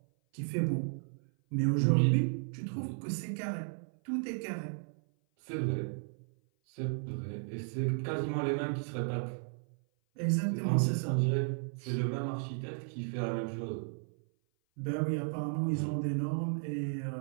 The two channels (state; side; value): silent; left; 55 dB below the other